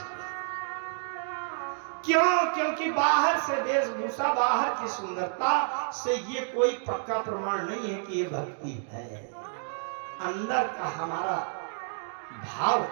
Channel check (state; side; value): silent; left; digital silence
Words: क्यों? क्योंकि बाहर से वेशभूषा, बाहर की सुंदरता से ये कोई पक्का प्रमाण नहीं है कि ये भक्ति है। अंदर का हमारा भाव